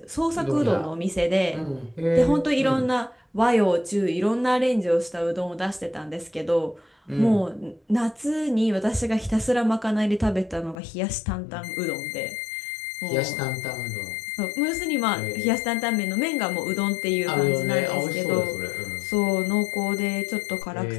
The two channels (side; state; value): right; drops out; at 10.8 s